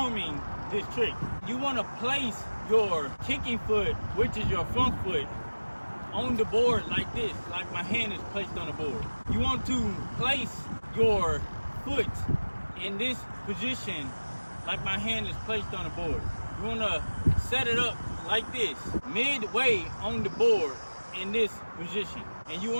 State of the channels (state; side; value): inverted; both; correlation -1.00